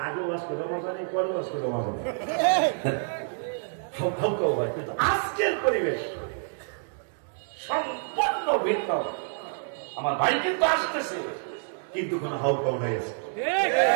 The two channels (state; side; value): silent; left; digital silence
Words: আগেও আজকে রমাজানে, পরেও আজকে রমাজানে হাউকাউ হয়, কিন্তু আজকের পরিবেশ সম্পূর্ণ ভিন্ন। আমার ভাই কিন্তু আসতেছে, কিন্তু কোন হাউকাউ নাই আছে।